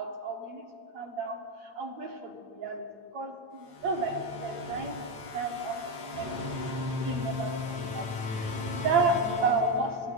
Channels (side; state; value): left; late; 8.7 ms